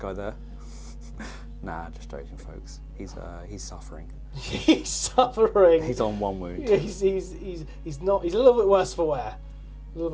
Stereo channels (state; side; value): identical; both; correlation 1.00